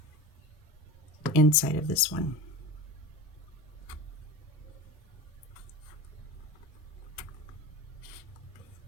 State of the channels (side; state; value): both; normal; correlation 0.30